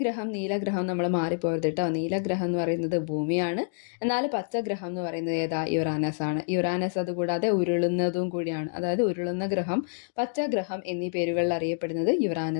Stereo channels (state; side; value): silent; right; digital silence